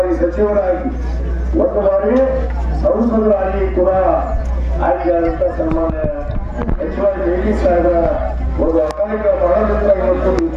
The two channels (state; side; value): identical; both; correlation 1.00